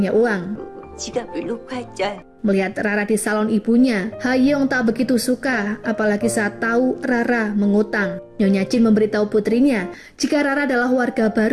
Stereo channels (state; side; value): identical; both; correlation 1.00